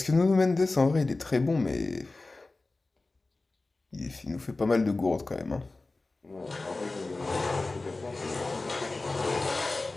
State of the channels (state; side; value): quieter; right; 3.3 dB